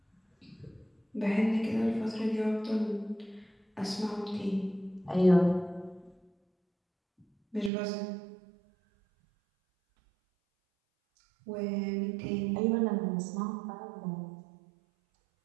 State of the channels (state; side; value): drops out; left; at 7.7 s